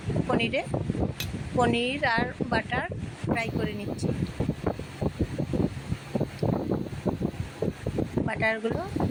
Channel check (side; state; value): both; identical; correlation 1.00